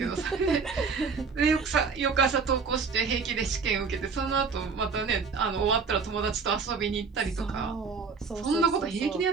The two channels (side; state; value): left; quieter; 5.2 dB